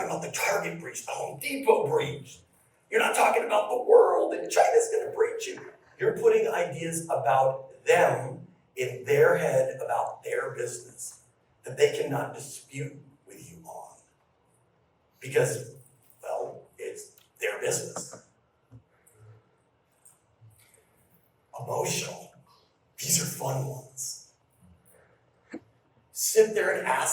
about the Target breach, the Home Depot breach. You're not talking about the world and China's going to breach you. You're putting ideas about them in their head about their business that they cannot dispute with you on. Because, well, it's their business. Emotional. These are fun ones. Sit there and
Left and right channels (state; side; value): identical; both; correlation 1.00